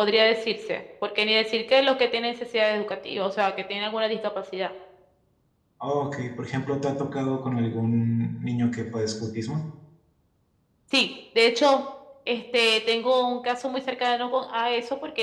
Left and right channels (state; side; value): identical; both; correlation 1.00